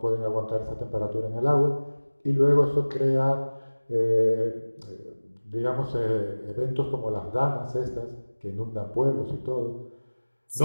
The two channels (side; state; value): both; inverted; correlation -1.00